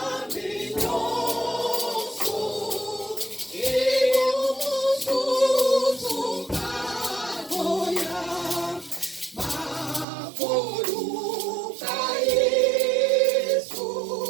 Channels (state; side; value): drops out; left; at 10.1 s